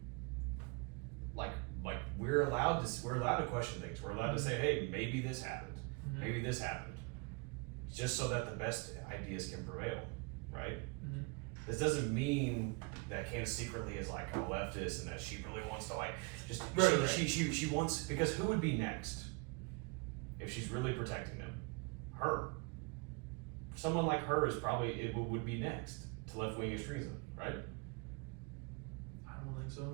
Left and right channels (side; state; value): left; quieter; 30.2 dB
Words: we're allowed to question things. We're allowed to say, hey, maybe this happened. Mm-hmm. Maybe this happened. Just so that the best ideas can prevail, right? Mm-hmm. This doesn't mean that Candace secretly is like a leftist and that she really wants to like just she wants, because who would be next if she's really protecting them? Her. Someone like her is probably would be next to left-wing extremism, right? I don't think